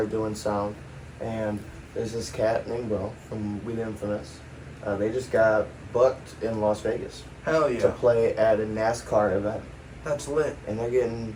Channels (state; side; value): identical; both; correlation 1.00